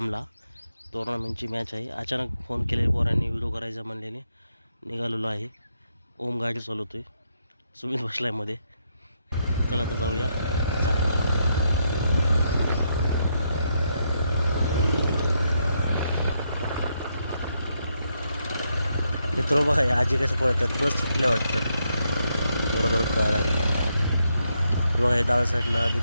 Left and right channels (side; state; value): both; inverted; correlation -0.79